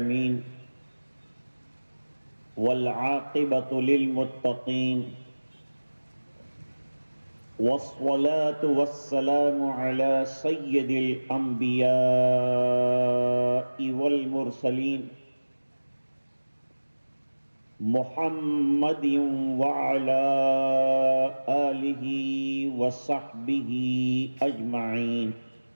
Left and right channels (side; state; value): both; inverted; correlation -1.00